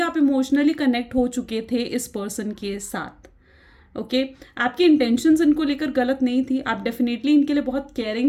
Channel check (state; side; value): identical; both; correlation 1.00